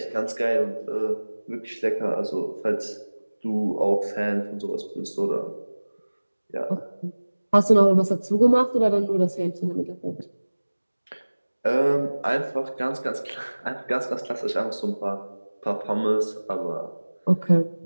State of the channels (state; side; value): inverted; both; correlation -1.00